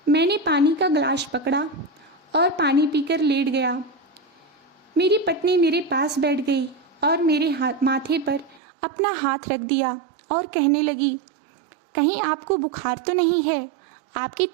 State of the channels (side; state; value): left; drops out; at 8.6 s